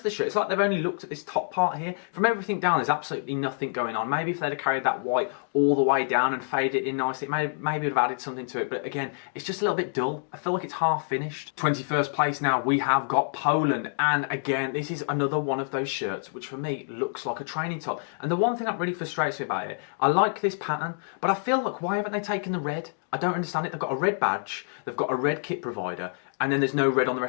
the shirt. It's like they've only looked at this top part here. From everything down, there's absolutely nothing going on. Maybe if they'd have carried that white all the way down and faded it in nicely, maybe would have added something to it. But again, it's just a little bit dull. I feel like it's half finished. 21st place now, we have got Poland, and again, this is another one of those shirts which for me looks like a training top. And the one thing that really frustrates me about it, I like this pattern, but I feel like, why haven't they taken the red? I don't understand it. They've got a red badge, they've got a red kit provider, and then there's no red on the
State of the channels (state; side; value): silent; right; digital silence